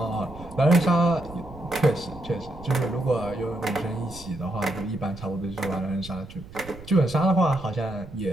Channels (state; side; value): noise; right; rumble, 16 dB below the sound